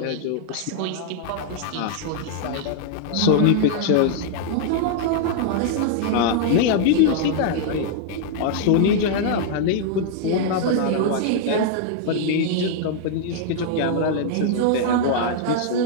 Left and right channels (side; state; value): both; different; correlation 0.00